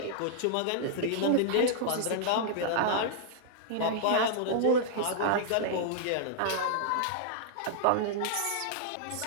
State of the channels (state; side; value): different; both; correlation -0.01